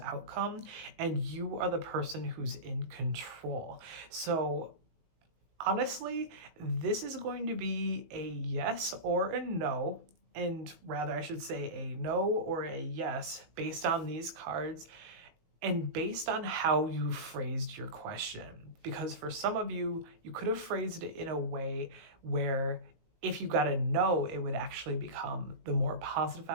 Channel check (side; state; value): left; late; 19 ms